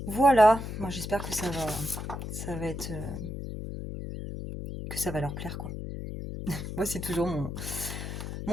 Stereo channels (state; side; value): noise; left; hum, 6 dB below the sound